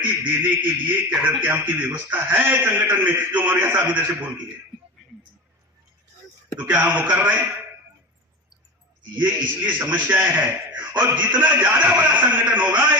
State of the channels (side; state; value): both; normal; correlation 0.26